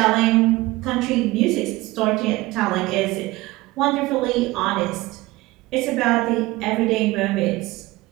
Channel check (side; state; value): left; quieter; 20.0 dB